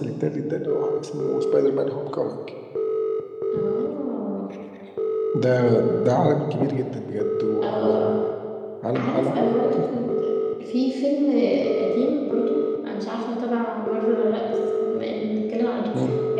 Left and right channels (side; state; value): both; identical; correlation 1.00